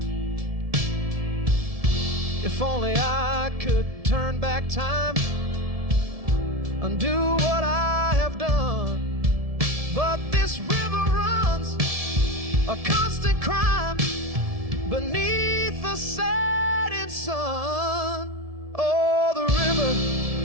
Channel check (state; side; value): late; left; 1.7 ms